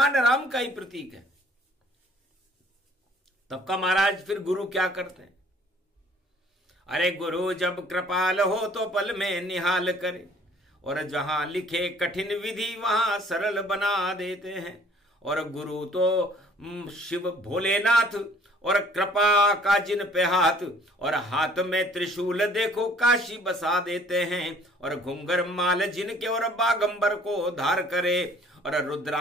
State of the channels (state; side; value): normal; both; correlation 0.56